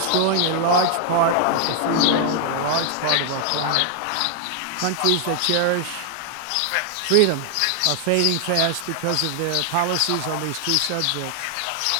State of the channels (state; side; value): different; both; correlation 0.00